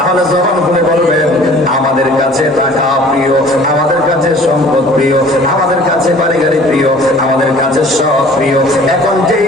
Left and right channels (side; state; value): both; normal; correlation 0.49